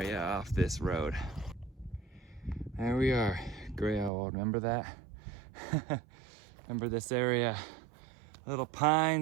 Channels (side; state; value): left; drops out; at 4.1 s